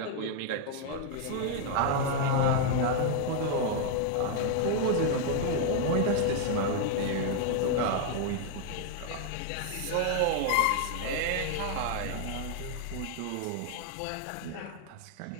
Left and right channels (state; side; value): different; both; correlation 0.00